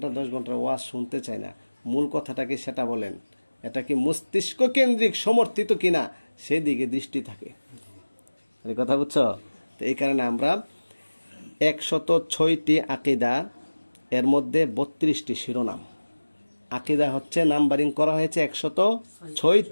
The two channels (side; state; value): both; inverted; correlation -1.00